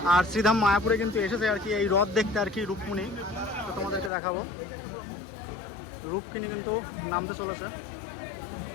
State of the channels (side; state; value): right; drops out; at 4.1 s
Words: আর শ্রীধাম মায়াপুরে কিন্তু এসেছে আর কি এই রথ দেখতে আর কি রূপমণি। তো তোমাদেরকে দেখাবো, রূপকিনী কিন্তু নামতে চলেছে।